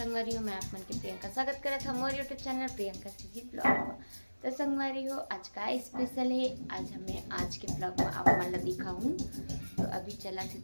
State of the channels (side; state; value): both; inverted; correlation -1.00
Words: हो। मैं आप मन के प्रियंका स्वागत करत हूँ मोर YouTube channel Priyanka CG blog. तो संगवारी हो, आज का स्पेशल है। आज हमें आज के ब्लॉग में आप मन ला दिखाऊँ। तो अभी चला थी